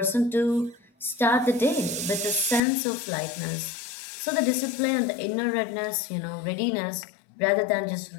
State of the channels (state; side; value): drops out; right; at 2.6 s